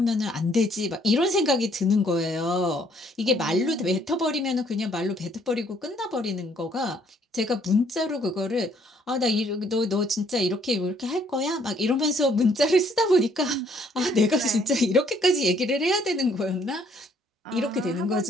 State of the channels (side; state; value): both; normal; correlation 0.65